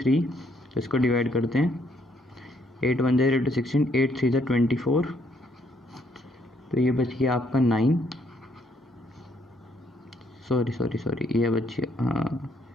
तो इसको डिवाइड करते हैं, 8 1 × 16, 8 3 × 24। तो ये बच गया आपका 9, सॉरी ये बच गया, हाँ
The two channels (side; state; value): both; normal; correlation 0.70